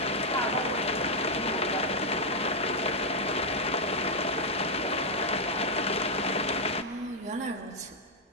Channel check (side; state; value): both; normal; correlation -0.03